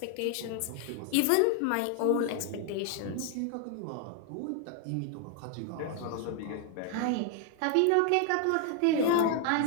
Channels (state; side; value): different; both; correlation 0.00